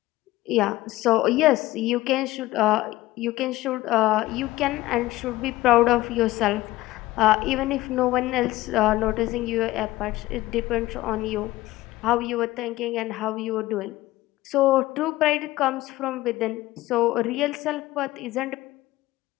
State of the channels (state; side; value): quieter; right; 17.5 dB